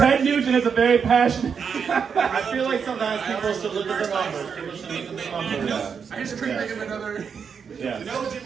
Nugent is a very passionate. I feel like sometimes people should look at the numbers. People should look at the numbers. I just couldn't think of another. Yeah. No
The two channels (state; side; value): quieter; left; 6.5 dB